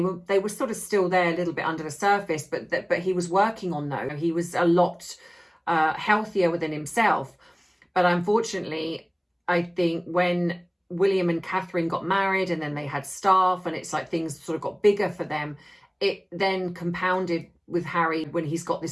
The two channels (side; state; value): both; identical; correlation 1.00